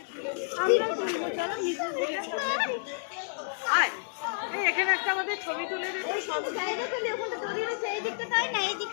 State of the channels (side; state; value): right; silent; digital silence